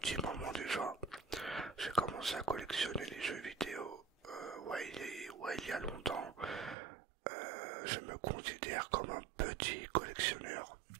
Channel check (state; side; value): drops out; left; at 6.8 s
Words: moment déjà, j'ai commencé à collectionner les jeux vidéo, il y a longtemps. Je me considère comme un petit collectionneur.